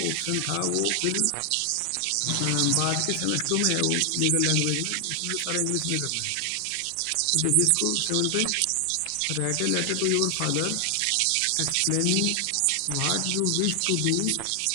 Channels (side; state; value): both; different; correlation 0.00